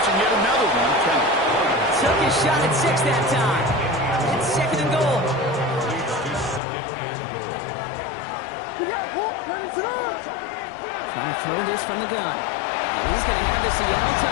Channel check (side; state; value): right; drops out; at 6.6 s